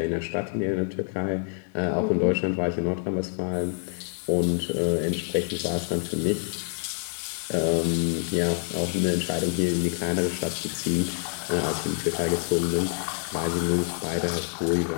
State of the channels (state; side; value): silent; right; digital silence